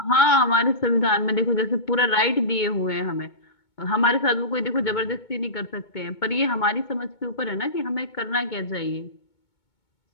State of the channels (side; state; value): right; late; 2.2 ms